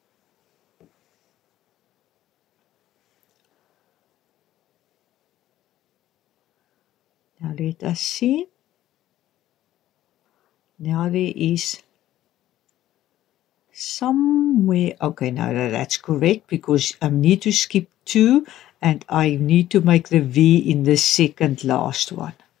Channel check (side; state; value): right; quieter; 13.6 dB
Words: Now let us see. Now there is somewhere, okay, now that's correct because I need to skip 2 and I need to make the V in the second last one.